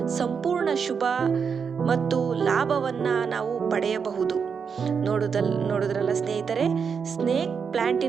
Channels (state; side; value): quieter; left; 6.3 dB